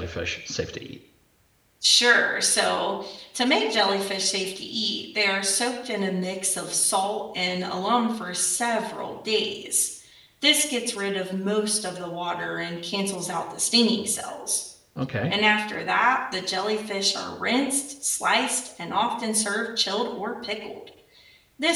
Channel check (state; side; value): identical; both; correlation 1.00